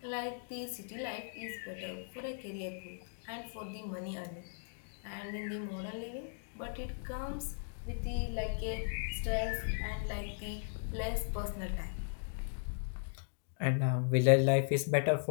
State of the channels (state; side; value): silent; right; digital silence